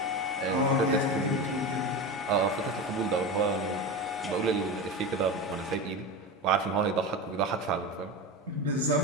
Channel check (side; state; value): both; normal; correlation 0.24